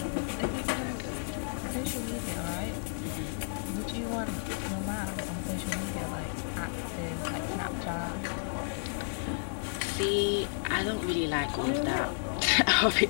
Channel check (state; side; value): silent; right; 56 dB below the other